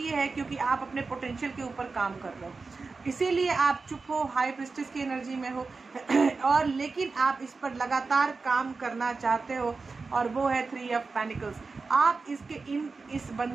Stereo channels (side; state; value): left; quieter; 4.2 dB